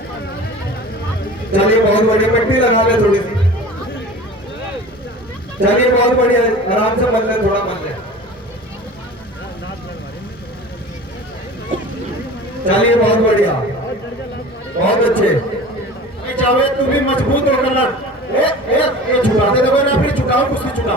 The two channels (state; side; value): normal; both; correlation 0.38